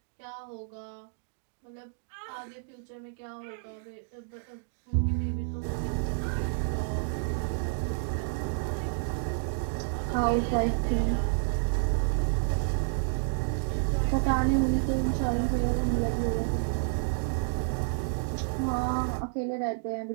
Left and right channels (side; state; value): left; silent; digital silence